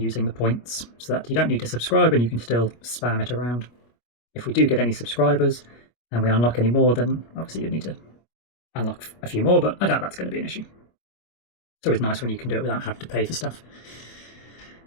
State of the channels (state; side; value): late; right; 25 ms